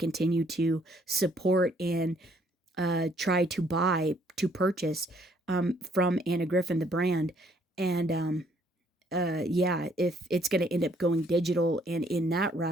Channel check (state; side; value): normal; both; correlation 0.65